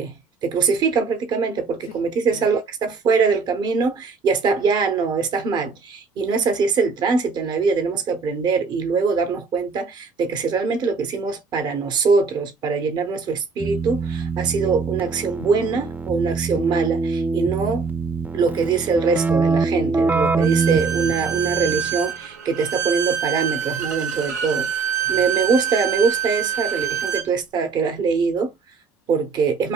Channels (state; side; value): quieter; left; 4.8 dB